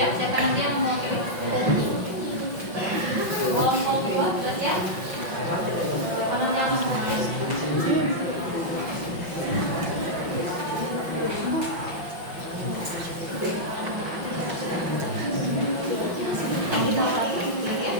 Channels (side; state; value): left; late; 5.7 ms